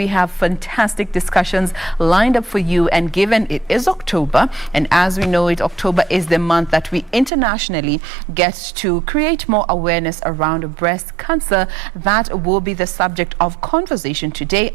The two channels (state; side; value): drops out; left; at 7.3 s